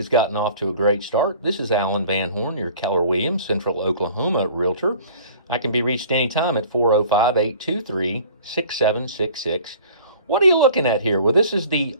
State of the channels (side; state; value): both; inverted; correlation -0.48